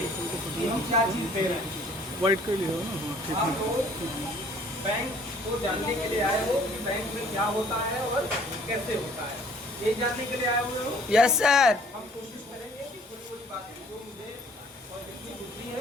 कि हम क्या चीज़ दे रहे हैं। वाइट कर लिया हो ना? हाँ ठीक आप है। लोग बैंक को जानने के लिए आए हो कि बैंक में क्या होता है और कैसे होता है, ये जानने के लिए आए हुए हो। Yes sir. हम कोशिश करेंगे कि थोड़ी थोड़ी बातें जो मुझे और जितनी बुद्धि है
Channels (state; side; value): normal; both; correlation 0.55